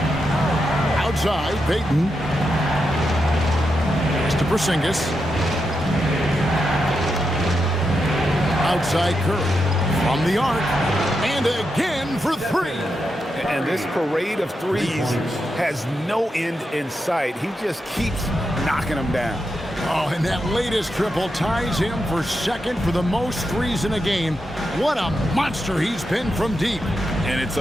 Outside, Payton. To Porzingis. Outside Curry. From the arc. And again for 3. And this parade of threes has no end in sight. He just keeps knocking them down. Oh, and that latest triple ties him for second for the most threes in a game. What a monster he's been from deep. And it's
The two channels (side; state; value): both; normal; correlation 0.86